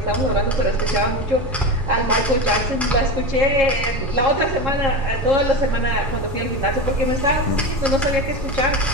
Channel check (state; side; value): normal; both; correlation 0.23